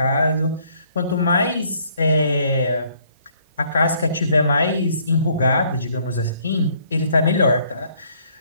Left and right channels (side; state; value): both; inverted; correlation -0.64